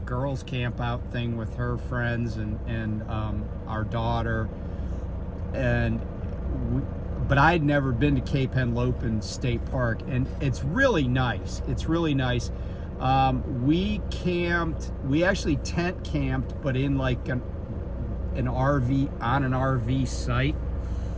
girls camp out thing with her friends and our daughter. But I had never been to Cape Henlopen State Park, and it's really nice. It's really nice. We actually tent camped, but in like an RV, on an RV site.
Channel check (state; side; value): identical; both; correlation 1.00